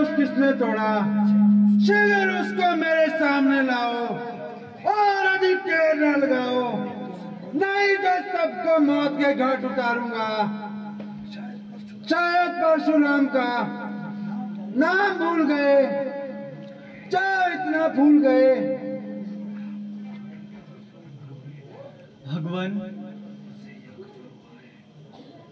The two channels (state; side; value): identical; both; correlation 1.00